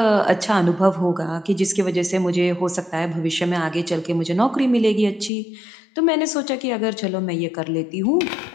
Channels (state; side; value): drops out; right; at 5.3 s